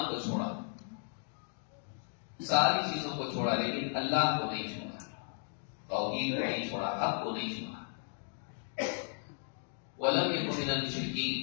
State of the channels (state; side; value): silent; right; 54 dB below the other